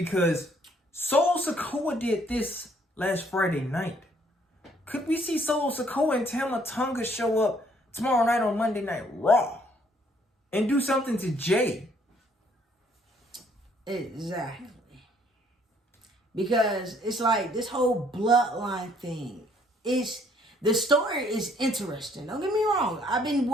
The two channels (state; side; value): normal; both; correlation 0.64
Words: Solo Sikoa did this last Friday night. Could we see Solo Sikoa and Tama Tonga show up tomorrow night on Monday Night Raw and do something to Jay? Exactly. Because it's like this whole bloodline thing. The story is interesting. Don't get me wrong. I've been